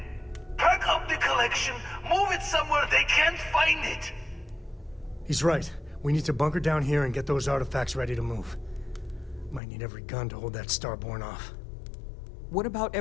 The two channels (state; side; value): drops out; right; at 9.6 s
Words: Pack up the collection, move it somewhere they can't find it! He's right. We need to bunker down here and get those artifacts ready to move. Might need every gun to hold that Starborn off. What about